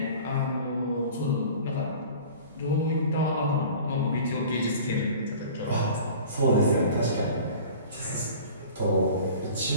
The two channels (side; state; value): both; inverted; correlation -0.42